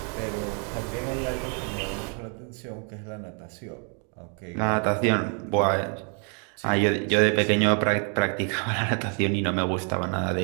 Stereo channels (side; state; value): left; quieter; 39.8 dB